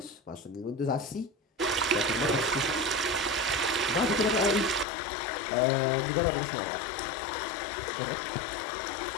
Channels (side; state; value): right; drops out; at 4.9 s